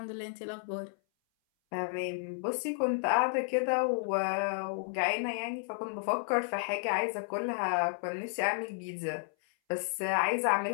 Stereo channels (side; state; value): right; silent; 56 dB below the other